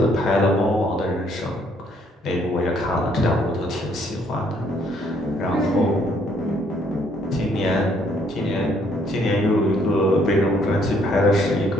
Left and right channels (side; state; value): both; normal; correlation 0.67